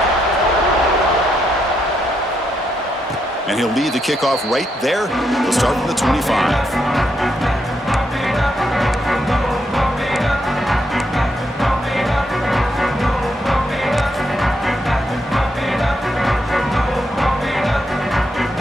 And he'll lead the kickoff right there. He'll start from the 25.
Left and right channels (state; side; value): normal; both; correlation 0.79